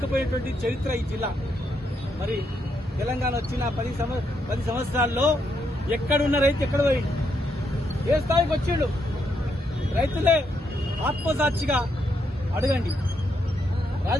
చరిత్ర ఈ జిల్లా. మరి తెలంగాణ వచ్చిన 10 సంవత్సరాల్లో ఎక్కడున్న రైతు ఎక్కడ పోయిండు? ఏ స్థాయికి వచ్చిండు? రైతులే ఆత్మసాక్షిగా అడగండి.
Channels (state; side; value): normal; both; correlation 0.78